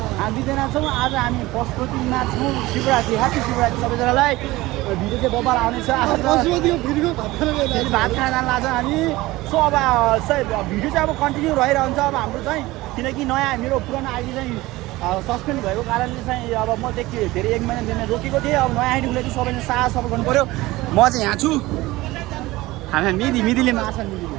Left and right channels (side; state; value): left; quieter; 19.2 dB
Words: हामी दुईजना छौँ। आज हामी पशुपतिमा छौँ। शिवरात्रि ह्याप्पी शिवरात्रि सबैजनालाई। भिडियो चाहिँ बबाल आउनेछ। आज भात खान जान लाग्छ हामी। सो अब भिडियो चाहिँ अब कन्टिन्यू रहिरहन्छ अब हाम्रो चाहिँ, किनकि नयाँ मेरो पुरानो आइडी चाहिँ सस्पेन्ड भएको कारणले चाहिँ अब म धेरै 1 महिना रोकेको थिएँ। अब नयाँ आइडी उसले चाहिँ सबैले साथ सपोर्ट गर्नु पऱ्यो। म चाहिँ यहाँ छु। हामी मिदीले मार्छ